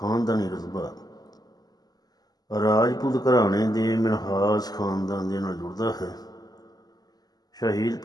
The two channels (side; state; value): right; late; 0.19 ms